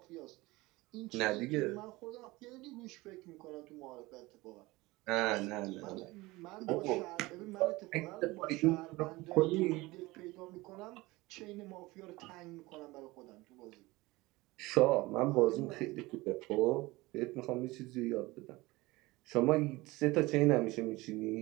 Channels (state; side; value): quieter; left; 21.1 dB